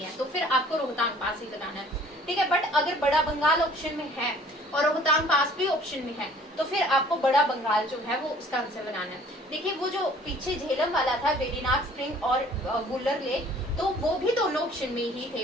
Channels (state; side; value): normal; both; correlation 0.54